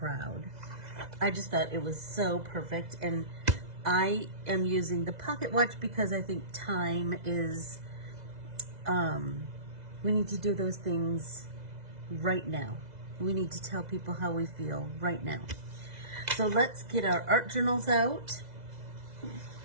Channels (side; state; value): left; late; 2.0 ms